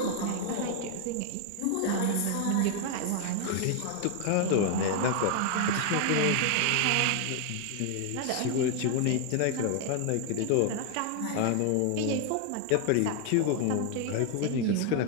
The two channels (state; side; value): different; both; correlation 0.00